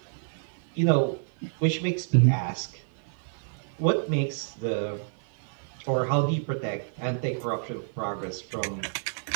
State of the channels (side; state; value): left; silent; 57 dB below the other